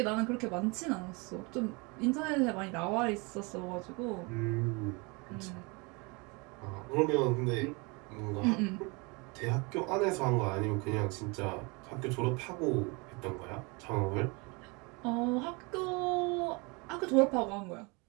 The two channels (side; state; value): left; quieter; 29.0 dB